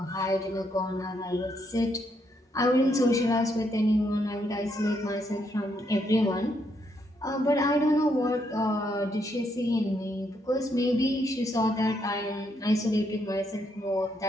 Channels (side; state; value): both; normal; correlation 0.76